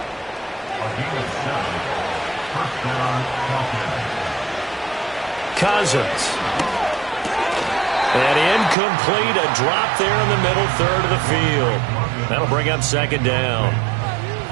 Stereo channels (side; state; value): left; drops out; at 8.8 s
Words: Cousins. And incomplete. A drop there in the middle third of the field. That'll bring up 2nd down.